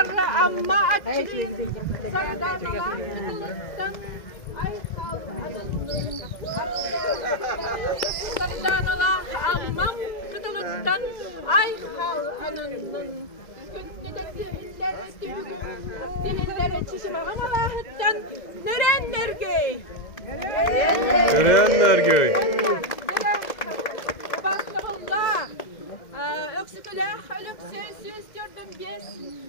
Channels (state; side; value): late; right; 2.0 ms